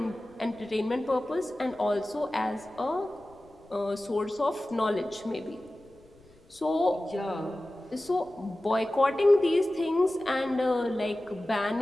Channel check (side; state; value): left; noise; rumble, 28 dB below the sound